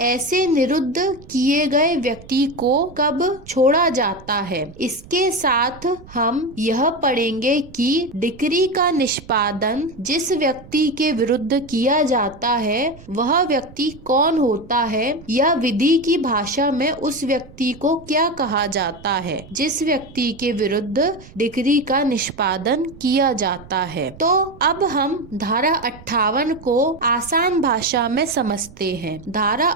ऐसे निरुद्ध किए गए व्यक्ति को कब छोड़ा जाता है। इसके साथ हम यह पढ़ेंगे कि डिक्री का निष्पादन जिस व्यक्ति के विरुद्ध किया जाता है वह व्यक्ति कौन होता है, या विधि की भाषा में उस व्यक्ति को क्या कहा जाता है जिस व्यक्ति के विरुद्ध डिक्री का निष्पादन किया जाता है। तो अब हम धारा 58 को आसान भाषा में समझते हैं। धारा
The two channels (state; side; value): noise; right; rumble, 20 dB below the sound